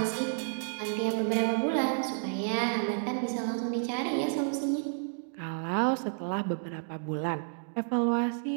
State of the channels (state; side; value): silent; left; digital silence